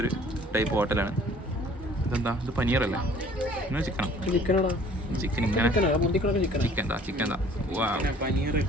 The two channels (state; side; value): normal; both; correlation 0.53